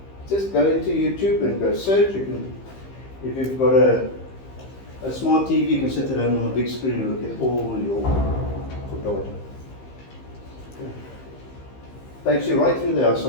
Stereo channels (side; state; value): right; late; 15 ms